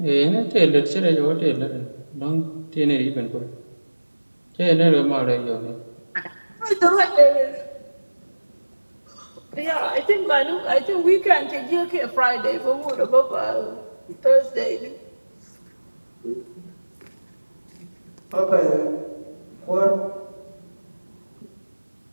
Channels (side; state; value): both; inverted; correlation -1.00